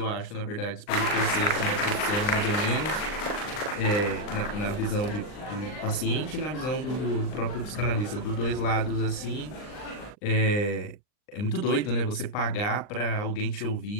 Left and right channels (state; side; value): late; right; 39 ms